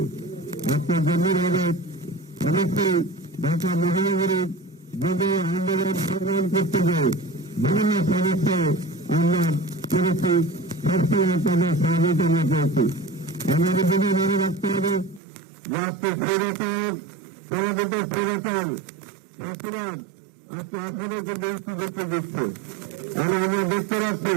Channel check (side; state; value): left; drops out; at 15.2 s